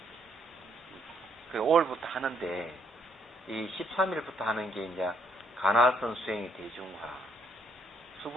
그 5월부터 하는데, 이 13일부터 하는 게 이제 가나선 수행의 대중화,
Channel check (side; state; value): both; normal; correlation 0.69